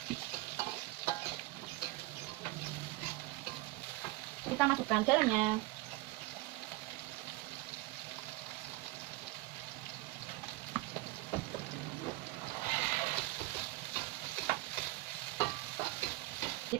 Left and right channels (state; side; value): quieter; left; 20.3 dB